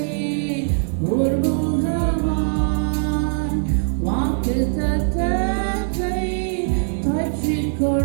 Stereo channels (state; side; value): silent; left; digital silence